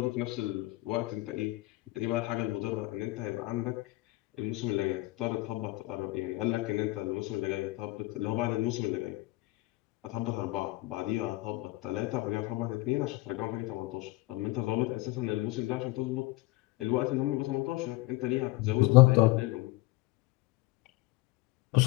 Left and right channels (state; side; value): quieter; right; 20.1 dB